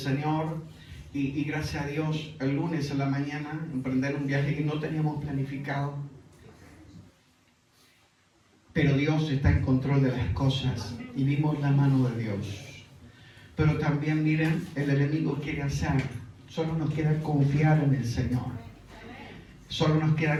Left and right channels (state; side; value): identical; both; correlation 1.00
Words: y gracias a Dios, el lunes a la mañana, emprender un viaje que no teníamos planificado. Pero Dios está en control de las cosas, y vimos la mano de Dios. Pero también, miren, el enemigo quiere hacer, solo nos queda confiar en el Señor. Solo nos